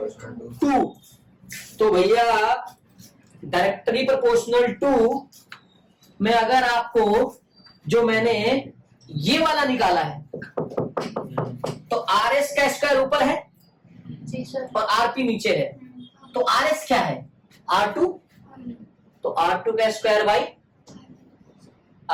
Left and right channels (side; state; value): both; identical; correlation 1.00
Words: 2। तो भैया डायरेक्टली प्रोपोर्शनल टू में अगर आपको जो मैंने ये वाला निकाला है तो RS का स्क्वायर ऊपर है जी सर। और RP नीचे है, तो RS क्या है? R2, तो R2 का स्क्वायर बाई